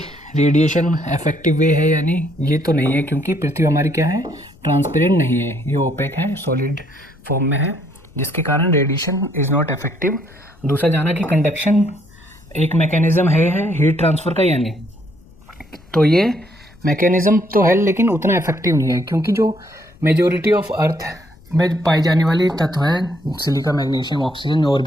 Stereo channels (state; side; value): noise; left; rumble, 26 dB below the sound